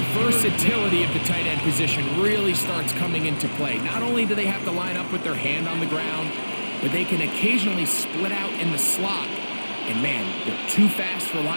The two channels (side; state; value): both; inverted; correlation -1.00